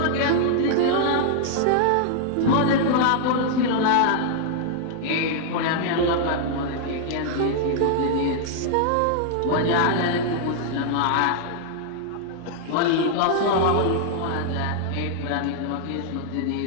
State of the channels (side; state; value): both; different; correlation -0.01